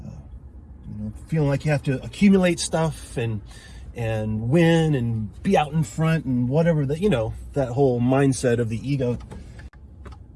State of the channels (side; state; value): both; identical; correlation 1.00